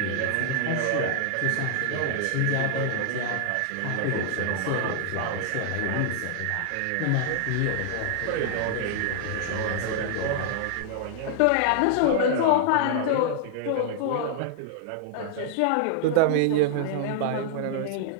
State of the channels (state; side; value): different; both; correlation 0.00